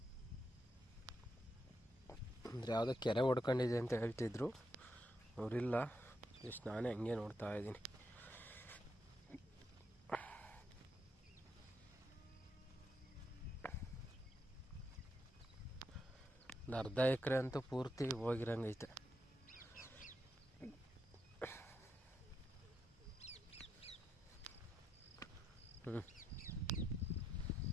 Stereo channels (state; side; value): normal; both; correlation 0.83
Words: ಅಂದರೆ ಯಾವುದೋ ಕೆರೆ ಹೊಡ್ಕೊಂಡಿದೆ ಅಂತ ಹೇಳ್ತಿದ್ರು ಅವರಿಲ್ಲ. ಜಸ್ಟ್ ನಾನೇ ಹಂಗೆ ನೋಡ್ತಾ ಇದ್ದೀನಿ. ಒಂದು ಅರ್ಧ ಎಕರೆ ಅಂತೂ ಪೂರ್ತಿ ಹೋಗಿರಂಗೈತೆ.